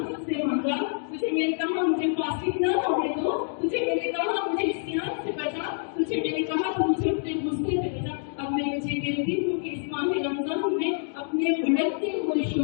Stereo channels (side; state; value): right; silent; digital silence